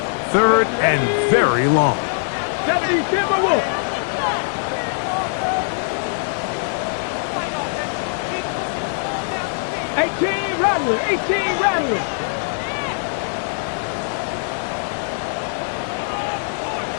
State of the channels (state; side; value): silent; right; digital silence